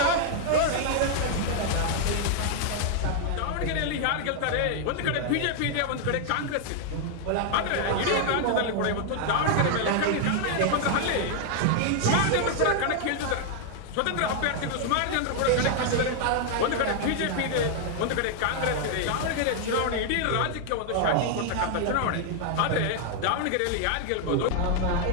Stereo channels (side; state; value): both; different; correlation 0.00